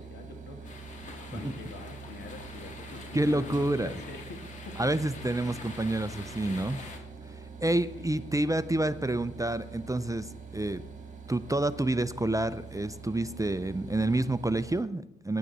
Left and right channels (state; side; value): normal; both; correlation 0.84